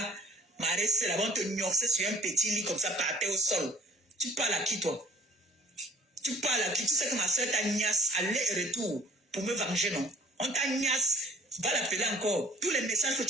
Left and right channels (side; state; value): both; normal; correlation 0.51